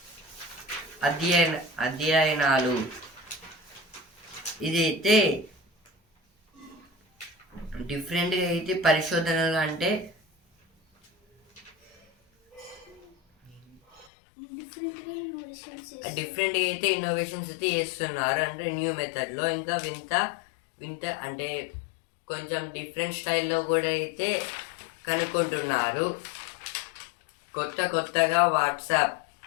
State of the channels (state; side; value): drops out; right; at 14.1 s